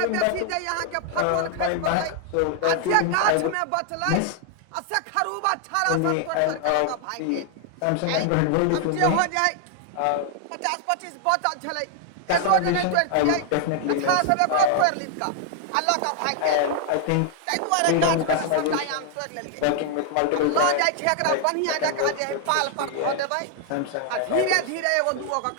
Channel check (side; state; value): both; different; correlation 0.00